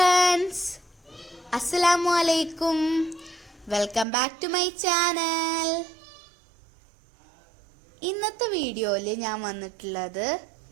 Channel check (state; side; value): drops out; left; at 4.0 s